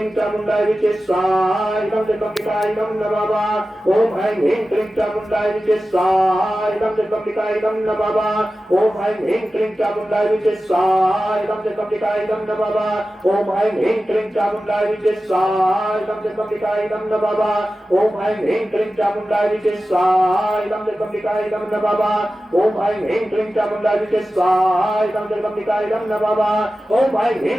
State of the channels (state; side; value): normal; both; correlation 0.94